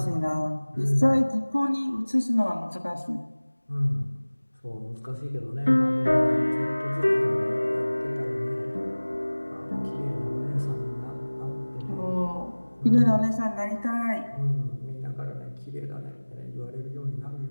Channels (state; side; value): inverted; both; correlation -1.00